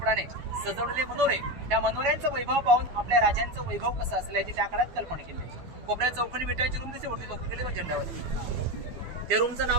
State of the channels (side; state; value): left; late; 12 ms